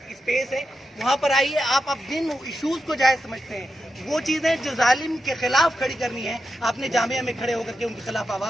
स्पेस है। वहाँ पर आइए, आप अब जिन इश्यूज़ को जायज़ समझते हैं, वो चीज़ें जो जालिम के खिलाफ खड़ी करनी है, आपने जामिया में खड़े होकर के उनके खिलाफ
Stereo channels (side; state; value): both; normal; correlation 0.88